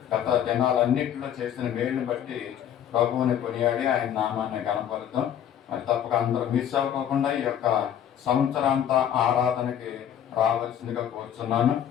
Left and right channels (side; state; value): right; quieter; 9.8 dB